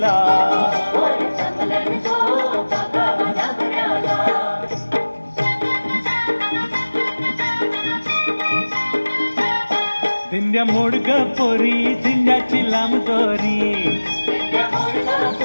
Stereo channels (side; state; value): both; inverted; correlation -1.00